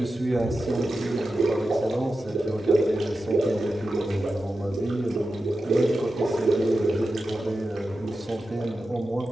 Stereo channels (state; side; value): normal; both; correlation 0.92